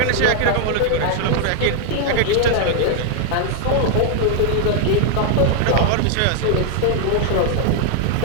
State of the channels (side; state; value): both; different; correlation 0.00